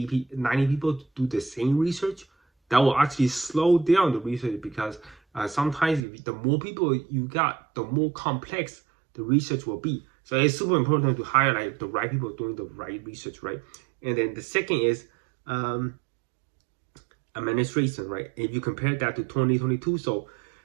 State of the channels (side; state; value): left; drops out; at 6.0 s